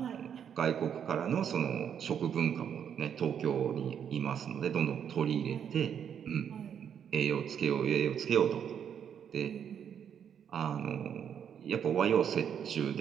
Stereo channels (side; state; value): left; quieter; 8.3 dB